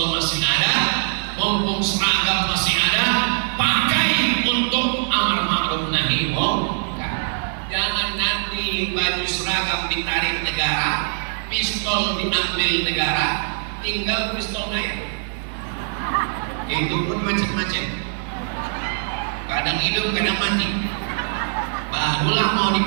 masih ada, mumpung seragam masih ada, pakai untuk amar ma'ruf nahi munkar. Jangan nanti baju seragam ditarik negara, pistol diambil negara, tinggal pistol air. Itu pun macam-macam. Kadang hidup, kadang mati. Barulah mau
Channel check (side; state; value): left; silent; digital silence